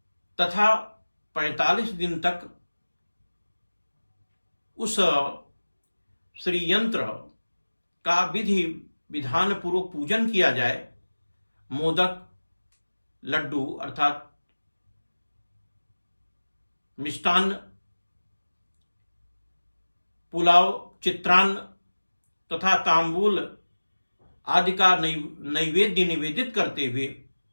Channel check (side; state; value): both; inverted; correlation -1.00